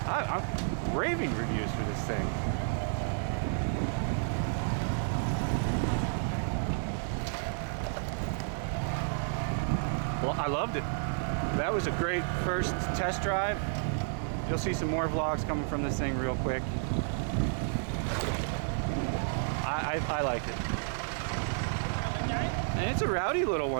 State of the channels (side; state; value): left; silent; digital silence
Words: I'm raving reviews for this thing. Well, I loved it. That was a great first test drive. You'll see some more vlogs coming from this thing real quick. I liked it. And it's a rowdy little